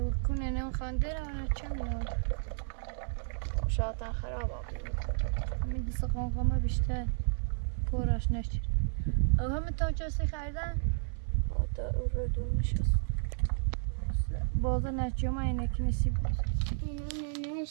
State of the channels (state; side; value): silent; left; 56 dB below the other